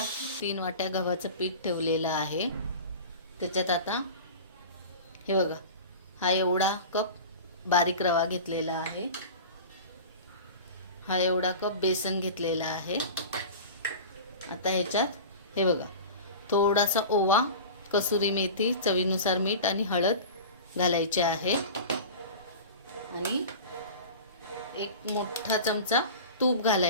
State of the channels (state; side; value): inverted; both; correlation -0.34